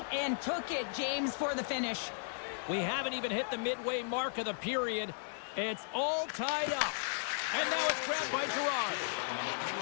and took it, James, for the finish. We haven't even hit the midway mark of the period. It's all tied up. And now it's grabbed by Girard.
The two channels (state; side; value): silent; right; digital silence